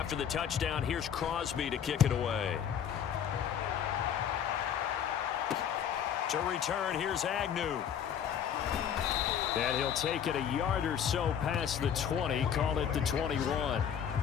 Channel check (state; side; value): quieter; right; 8.7 dB